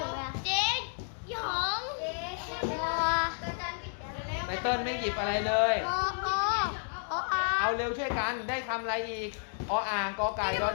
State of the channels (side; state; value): right; silent; 57 dB below the other